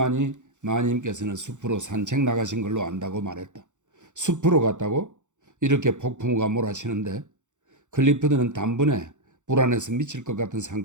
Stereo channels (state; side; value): late; left; 0.85 ms